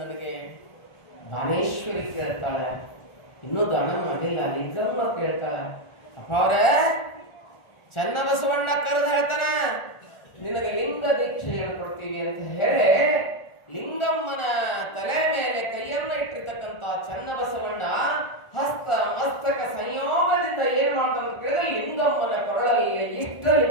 ದಾನೇಶ್ವರಿ ಕೇಳ್ತಾಳೆ, ಇನ್ನೂ ದಾನ ಮಾಡಿಲ್ಲ. ಲಿಂಗಮ್ಮ ಕೇಳ್ತಾಳೆ, ಅಪ್ಪ ಅವ್ರೆ ಚೆನ್ನ ಬಸವಣ್ಣ ಕರೆದು ಹೇಳ್ತಾನ ನಿನಗೆ ಲಿಂಗ ದೀಕ್ಷೆ ಹೇಳ್ಕೊಡ್ತೀವಿ ಅಂತ ಹೇಳಿ ಲಿಂಗಮ್ಮನ ತಲೆ ಮೇಲೆ ಕೈಯನ್ನ ಇಟ್ಟಿರ್ತಕ್ಕಂಥ ಚೆನ್ನ ಬಸವಣ್ಣ ಹಸ್ತ ಮಸ್ತಕ ಸಂಯೋಗದಿಂದ ಏನ್ ಮಾಡ್ತಾನ ಅಂತ ಕೇಳಿದ್ರೆ ಲಿಂಗಮ್ಮನ ಕೊರಳಲ್ಲಿ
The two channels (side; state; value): right; late; 1.4 ms